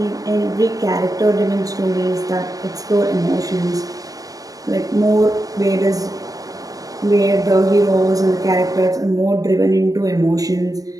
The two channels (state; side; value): late; left; 0.18 ms